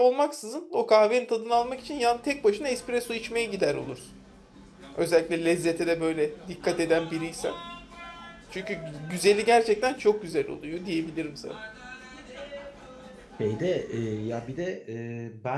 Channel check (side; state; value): both; identical; correlation 1.00